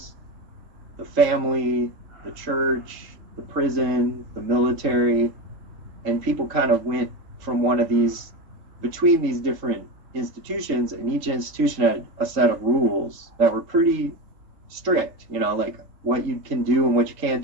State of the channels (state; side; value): late; left; 3.7 ms